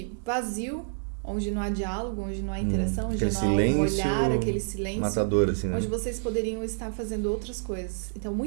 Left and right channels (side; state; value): left; silent; digital silence